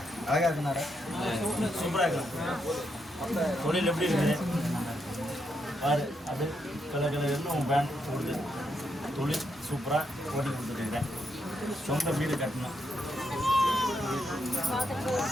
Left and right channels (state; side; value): normal; both; correlation 0.80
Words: அழகா இருக்குனாரா? சூப்பராக இருக்கு. தொழில் எப்படி இருக்குது பாரு. அது கலர் கலர்னு உன் பேண்ட் கொடுத்து தொழில் சூப்பராக ஓட்டி கொடுத்துருக்குறேன். சொந்த வீடு கட்டணும்,